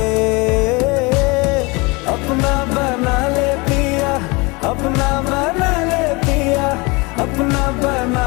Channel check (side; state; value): right; quieter; 26.5 dB